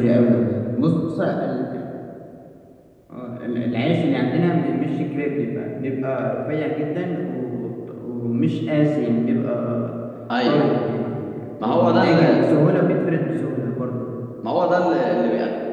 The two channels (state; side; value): identical; both; correlation 1.00